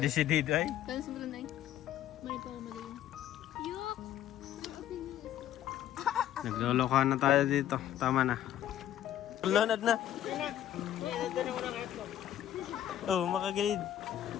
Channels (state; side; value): quieter; right; 11.8 dB